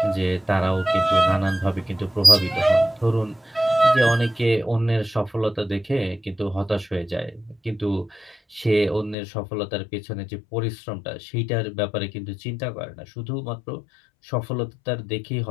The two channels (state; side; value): drops out; right; at 9.2 s